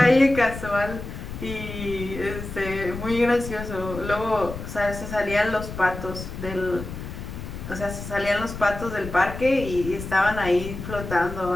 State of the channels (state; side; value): noise; left; rumble, 9 dB below the sound